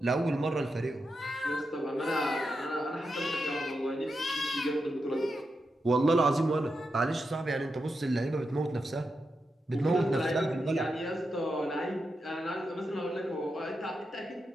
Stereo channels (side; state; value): both; normal; correlation 0.87